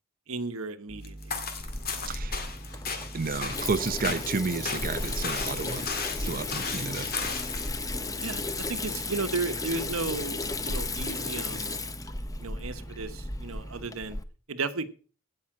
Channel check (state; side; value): normal; both; correlation 0.23